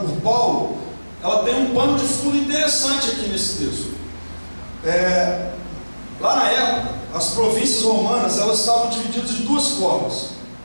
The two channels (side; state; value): both; inverted; correlation -1.00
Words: Paulo, ela tem um pano de fundo interessante aqui nesse texto. Lá na época, as províncias romanas, elas estavam divididas de duas formas.